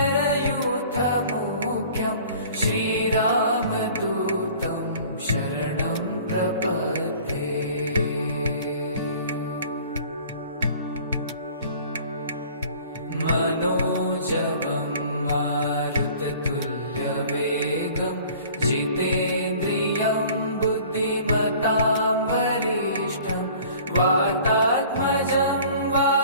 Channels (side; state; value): both; inverted; correlation -0.48